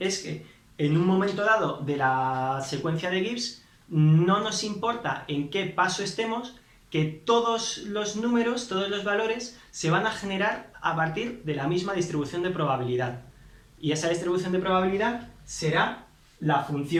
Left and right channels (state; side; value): identical; both; correlation 1.00